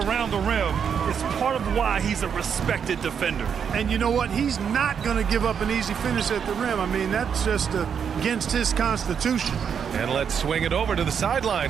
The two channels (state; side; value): quieter; left; 7.3 dB